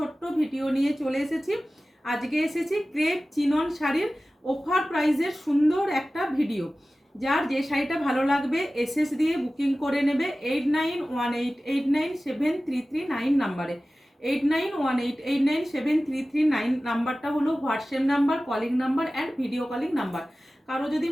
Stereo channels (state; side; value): normal; both; correlation 0.96